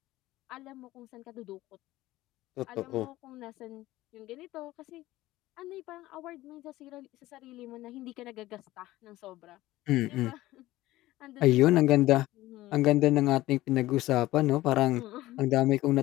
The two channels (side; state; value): right; quieter; 16.9 dB